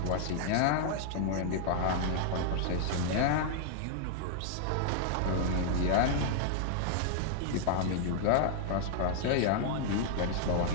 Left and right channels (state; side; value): different; both; correlation -0.01